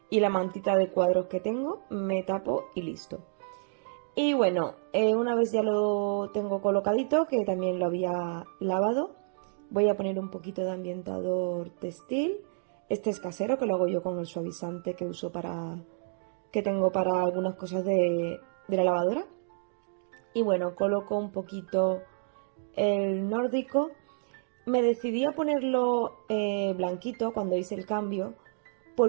y la mantita de cuadros que tengo, me tapo y listo. Y bueno, una vez ya lo tengo colocadito, que también lo había lavado, voy a poner un poquito de ambientador textil. Este es casero, que lo hago yo con el suavizante que uso que tengo para algunas cosas de la lavadora. Y bueno, coloco un poquito el nórdico. Me decidí a ponerlo blanquito cuando hice el cambio,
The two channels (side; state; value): left; silent; digital silence